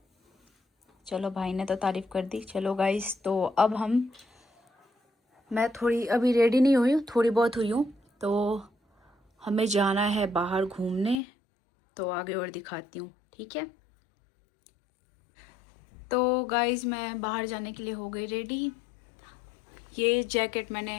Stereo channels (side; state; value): right; drops out; at 11.2 s